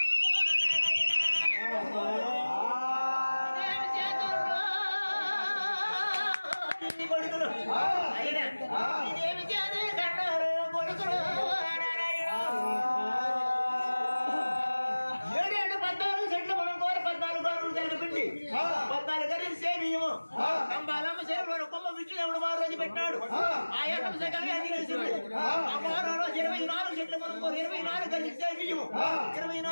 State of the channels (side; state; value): both; inverted; correlation -1.00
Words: కొడుకులు అయినా ఇదేమి చేదు కన్నారు కొడుకులు 7 14 చెట్లు మనం కోరి 14 గరువులు కలిపిండి 14 గరువులు సేమియము కంబాలమ్మ సేవలో కొమ్మ విష్ణుదేవుడు మారు రోజు పెట్టినాడు ఆ ఏకం సకలే అది కలిసింది ఆ మారు రోజు 24 చెట్లు మనం కోరి 24 గరువులు సేమియము